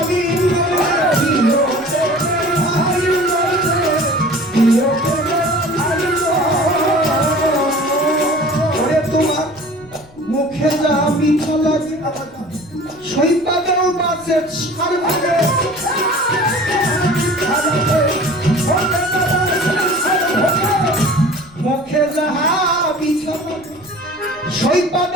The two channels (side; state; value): left; noise; rumble, 26 dB below the sound